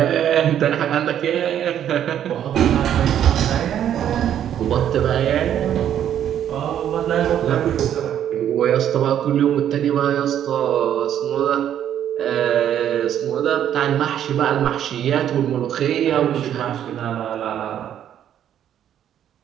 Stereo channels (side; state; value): left; quieter; 10.2 dB